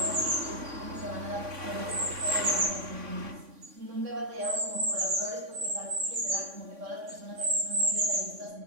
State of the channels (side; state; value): left; late; 3.6 ms